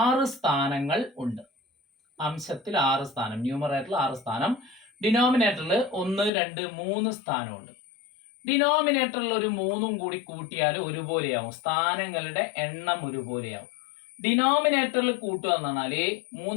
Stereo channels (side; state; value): right; drops out; at 6.3 s